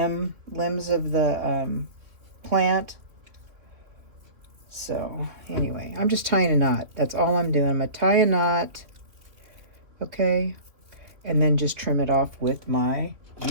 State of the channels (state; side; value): late; left; 3.2 ms